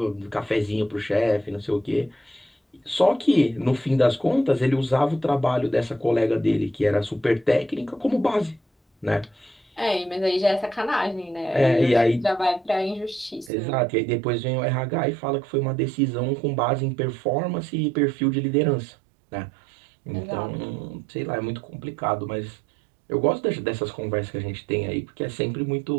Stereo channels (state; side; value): drops out; left; at 13.5 s